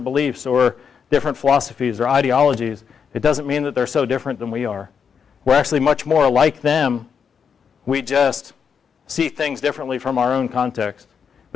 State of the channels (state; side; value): quieter; right; 6.7 dB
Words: beliefs or different philosophies or ideologies, it doesn't mean that they're so different than we are. We're actually much more like them. We just see things differently from our own context.